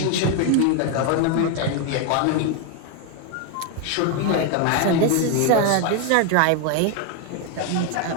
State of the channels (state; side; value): different; both; correlation 0.01